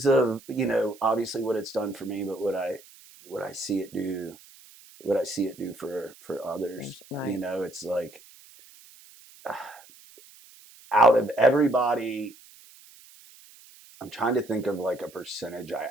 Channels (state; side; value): noise; right; hiss, 23 dB below the sound